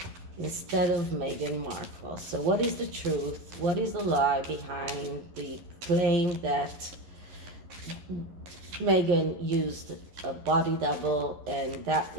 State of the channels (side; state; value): left; late; 12 ms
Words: Instead of Meghan Markle. So what is the truth? What is the lie behind the claim that Meghan used a body double, and that